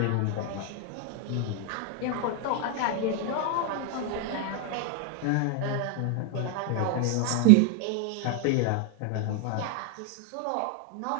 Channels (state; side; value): different; both; correlation 0.00